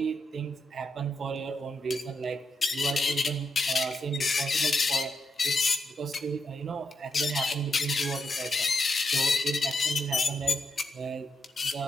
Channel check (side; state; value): both; normal; correlation 0.83